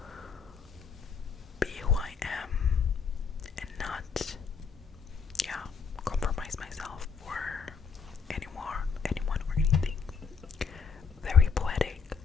be who I am and not, compromise myself for anyone or anything. Very poetic.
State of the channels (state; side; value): quieter; right; 5.9 dB